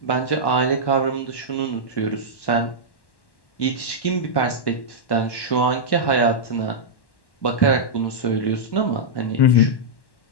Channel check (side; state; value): right; late; 1.1 ms